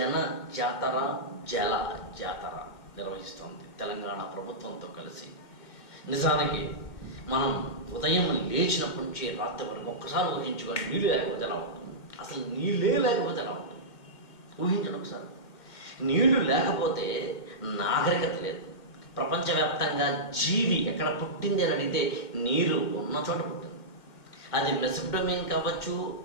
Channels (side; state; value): right; late; 2.1 ms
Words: జాతర జల జాతర నిర్వహిస్తోంది తెలంగాణ ప్రభుత్వంతో కలిసి. నిజానికి మనం ఉదయం లేచినప్పటి నుంచి రాత్రి వరకు ఒక్కసారి ఊహించుకొని నీళ్ళు లేకపోతే ఎలా ఉంటుంది, అసలు నీళ్ళే లేకపోతే ఎలా ఉంటుంది ఊహించండి ఒకసారి. నీళ్లు లేకపోతే నాగరికత లేదు. ప్రపంచవ్యాప్తంగా జీవి ఎక్కడ పుట్టింది అని అడిగితే నీరు ఉన్న చోట పుట్టింది. అది మెసొపొటేమియన్ కావచ్చు,